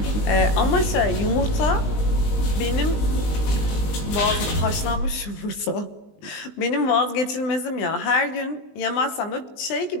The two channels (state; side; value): late; right; 19 ms